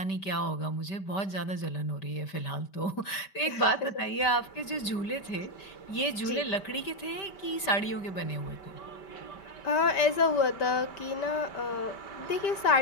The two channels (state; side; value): late; right; 5.1 ms